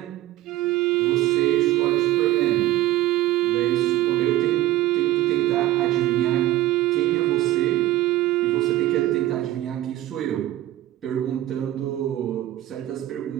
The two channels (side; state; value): left; quieter; 15.3 dB